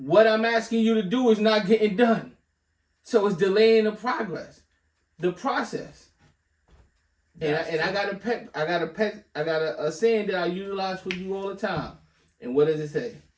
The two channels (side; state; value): both; identical; correlation 1.00